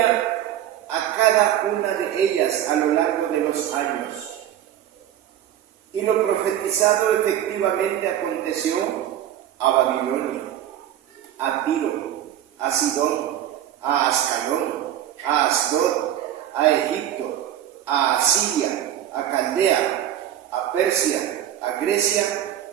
a cada una de ellas a lo largo de los años. Y lo profetizado efectivamente aconteció a Babilonia, a Tiro, a Sidón, a Ascalón, a Asdod, a Egipto, a Asiria, a Caldea, a Persia, a Grecia,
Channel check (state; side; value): quieter; left; 11.3 dB